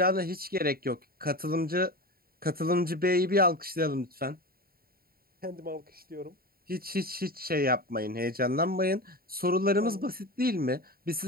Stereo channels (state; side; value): late; left; 0.43 ms